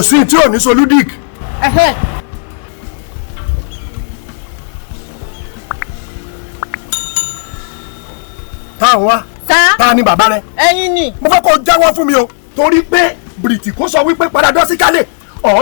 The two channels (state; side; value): silent; right; digital silence